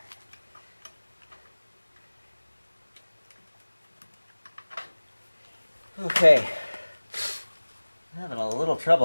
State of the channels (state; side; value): inverted; both; correlation -1.00